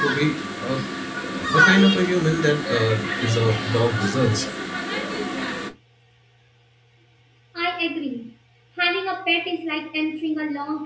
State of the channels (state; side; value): identical; both; correlation 1.00